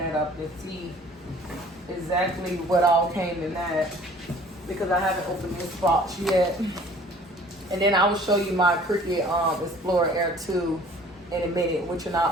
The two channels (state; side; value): normal; both; correlation 0.51